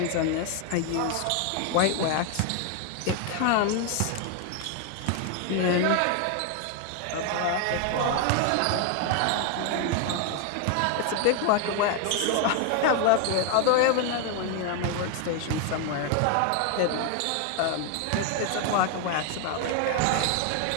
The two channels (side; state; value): both; different; correlation 0.00